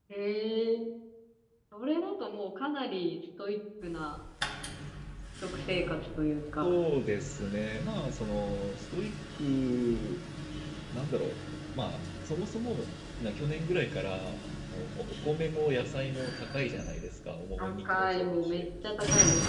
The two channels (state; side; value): identical; both; correlation 1.00